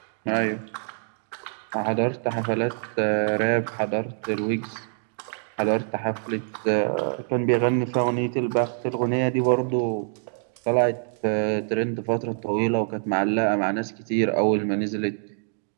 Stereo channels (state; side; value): silent; left; digital silence